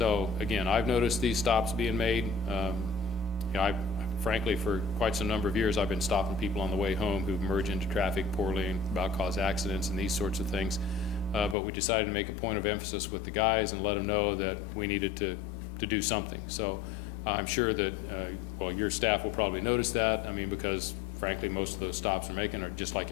again, I've noticed these stops being made. Frankly, for quite some number of years, I've been stopping people on the way home who merge into traffic poorly and about cause accidents and these sorts of things. But we decided to make a point of emphasis with the guys and let them know that we needed to do something. So I'm sure that, well, your staff will probably notice that. I mean, because frankly, most of those stops we're making are just like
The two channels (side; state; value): right; drops out; at 11.6 s